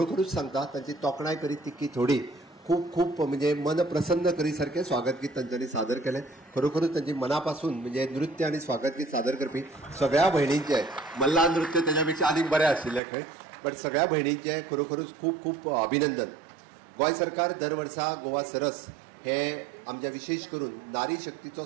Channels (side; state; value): left; drops out; at 13.0 s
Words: सांगता तांची तोखणाय करीत तितकी थोडी. खूप खूप म्हणजे मन प्रसन्न करी सारखें स्वागत गीत तांच्यांनी सादर केलें. खरोखरूच तांची मनापासून म्हणजे नृत्य आणि स्वागत गीत सादर करपी सगळ्या भयणींचे, मल्ला नृत्य तेज्या आनीक बरें आशिल्लें खंय, पण सगळ्या भयणींचे खरोखरूच खूप खूप अभिनंदन. गोंय सरकार दर वर्सा गोवा सरस हे आमच्या विशेष करून नारी शक्तीचो